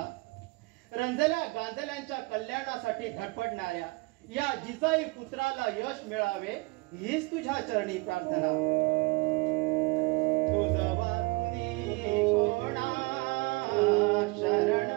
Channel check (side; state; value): left; quieter; 25.1 dB